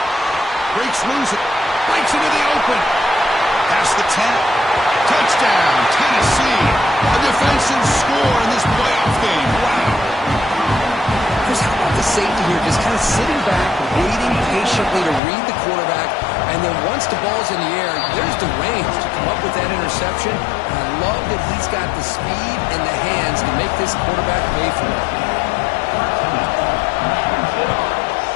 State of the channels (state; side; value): drops out; right; at 15.2 s